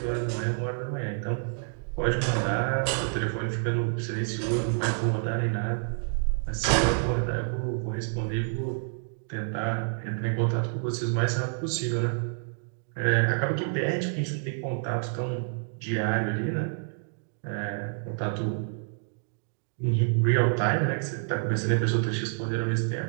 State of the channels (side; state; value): left; silent; digital silence